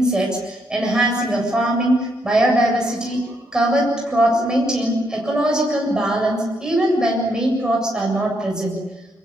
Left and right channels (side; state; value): both; normal; correlation 0.76